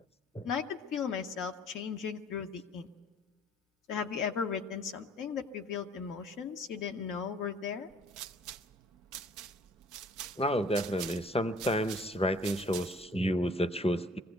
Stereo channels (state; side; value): normal; both; correlation 0.55